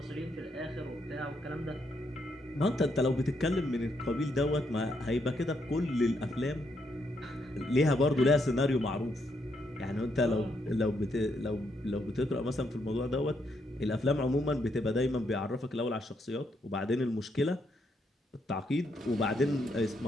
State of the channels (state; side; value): normal; both; correlation 0.76